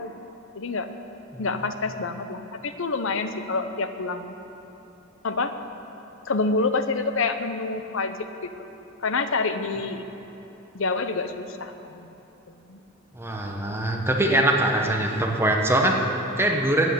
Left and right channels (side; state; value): both; normal; correlation 0.15